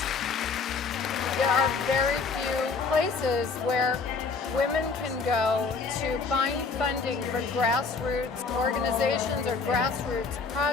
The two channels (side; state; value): right; quieter; 4.7 dB